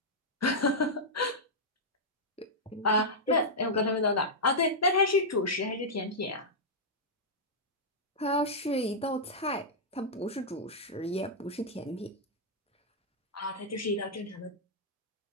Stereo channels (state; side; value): normal; both; correlation -0.08